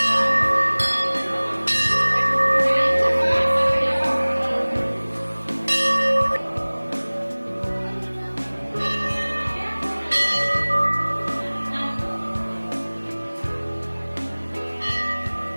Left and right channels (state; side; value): inverted; both; correlation -1.00